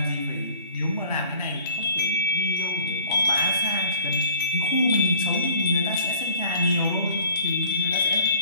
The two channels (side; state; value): both; inverted; correlation -0.51